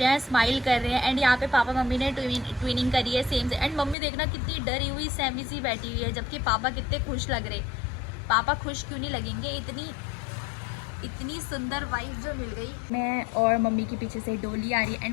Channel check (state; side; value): drops out; right; at 4.0 s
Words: हैं, स्माइल कर रहे हैं। एंड यहाँ पे पापा मम्मी ने ट्विनिंग करी है सेम से। एंड मम्मी देखना कितनी डरी हुई सहमी सी बैठी हुई है, जबकि पापा कितने खुश लग रहे। पापा खुश क्यों नहीं लगेंगे, इतनी सुंदर वाइफ जो मिल गई। मैं और मम्मी के पीछे से डोली आ रही है।